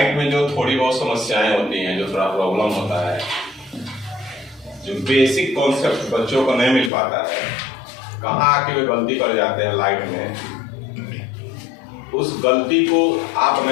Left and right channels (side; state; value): right; drops out; at 6.9 s